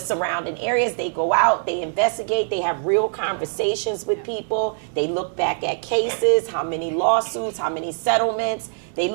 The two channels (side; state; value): left; silent; digital silence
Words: areas. They go out, they investigate, they have real conversations with people. They look back at cases, how many lawsuits, how many settlements. They